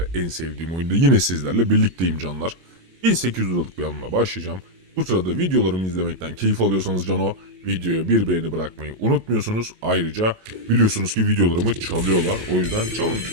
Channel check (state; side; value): late; left; 22 ms